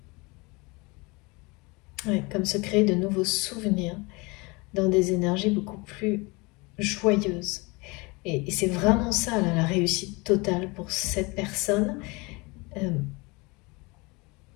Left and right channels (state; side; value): quieter; right; 26.3 dB